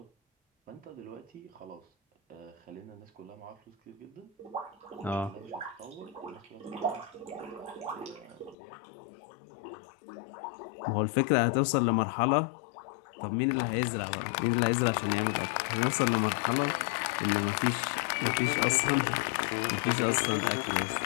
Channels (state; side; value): drops out; right; at 8.6 s